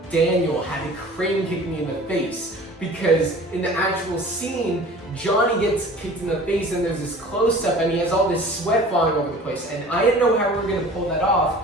Daniel had to crane kick me in the face because in the actual scene, Johnny gets kicked in the face and there's this close-up and he has all this sweat falling over the place and I didn't know how we were going to pull that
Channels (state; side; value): normal; both; correlation 0.44